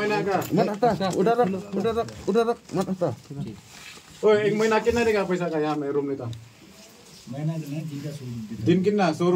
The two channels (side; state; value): both; identical; correlation 1.00